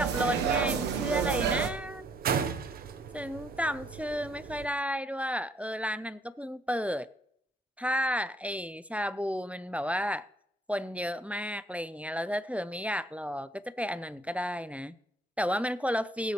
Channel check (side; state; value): both; normal; correlation 0.65